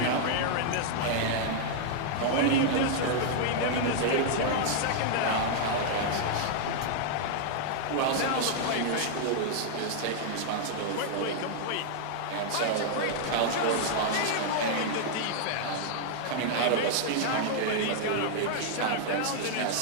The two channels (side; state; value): both; different; correlation -0.01